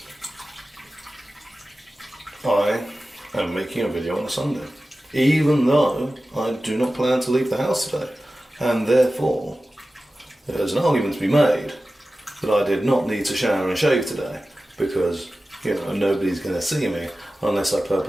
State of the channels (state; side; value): normal; both; correlation 0.95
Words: I am making a video on a Sunday, even though I do not plan to leave the house today, and therefore there's an argument to be made that I did not need to shower and shave today because, you know, nobody's going to see me unless I